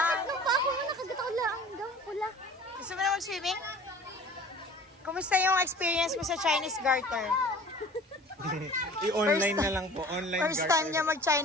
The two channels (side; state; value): both; normal; correlation 0.44